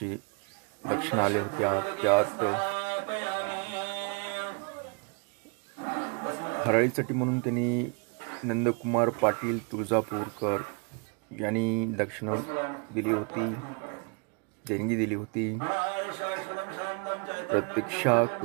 दक्षिणा आल्या होत्या, त्यात हराळीसाठी म्हणून त्यांनी नंदकुमार पाटील तुळजापूरकर यांनी दक्षिणा दिली होती, देणगी दिली होती। प्रतीक्षा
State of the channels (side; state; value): left; quieter; 35.7 dB